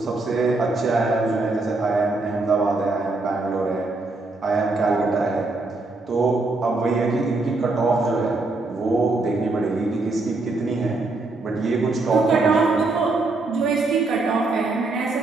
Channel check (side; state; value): left; quieter; 3.3 dB